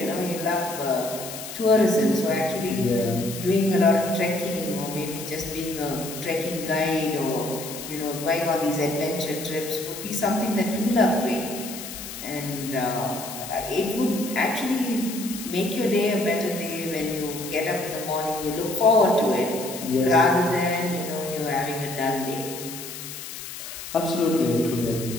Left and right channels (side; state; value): left; noise; hiss, 10 dB below the sound